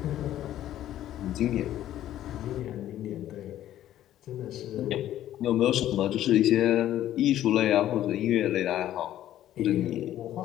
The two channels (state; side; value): quieter; right; 12.5 dB